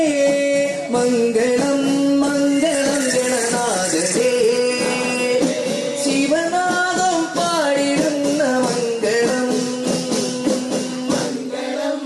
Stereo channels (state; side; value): identical; both; correlation 1.00